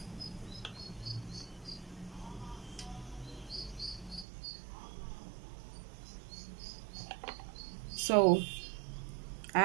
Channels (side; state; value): left; drops out; at 4.2 s